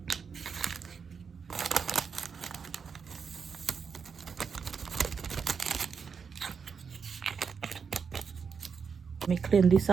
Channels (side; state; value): left; quieter; 6.0 dB